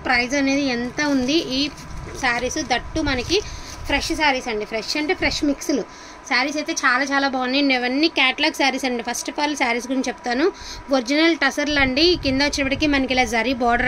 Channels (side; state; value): both; identical; correlation 1.00